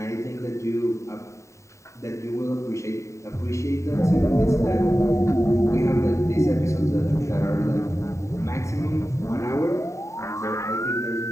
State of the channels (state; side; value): late; right; 0.14 ms